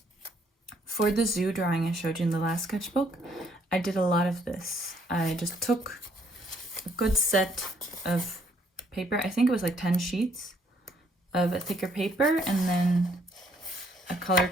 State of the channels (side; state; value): both; normal; correlation 0.67